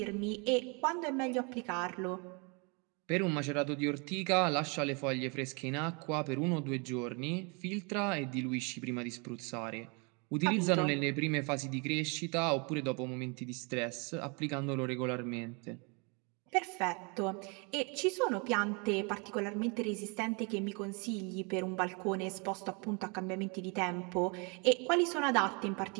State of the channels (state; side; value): quieter; left; 32.3 dB